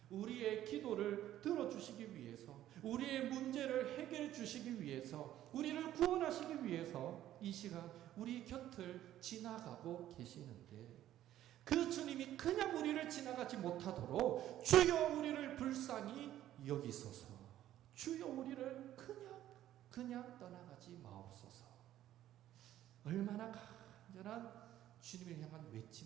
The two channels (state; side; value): quieter; left; 12.8 dB